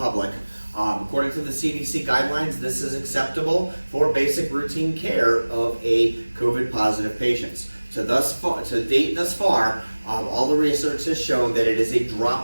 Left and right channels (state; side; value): inverted; both; correlation -1.00